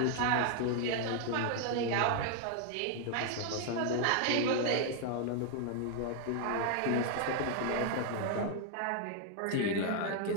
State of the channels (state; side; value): different; both; correlation 0.00